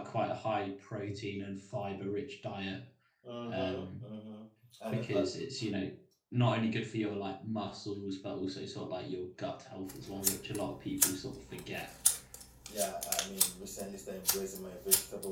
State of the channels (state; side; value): identical; both; correlation 1.00